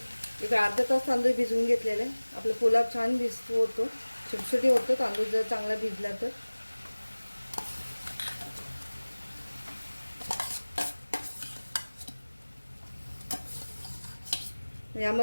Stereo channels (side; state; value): both; inverted; correlation -1.00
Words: एक अर्धा तास तांदूळ भिजवून घेतलेले. आपला पुलाव छान भिजतो होतो. छोटी होतं तांदूळ जर चांगला भिजला तर.